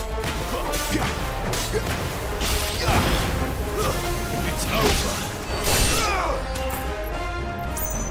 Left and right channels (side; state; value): both; identical; correlation 1.00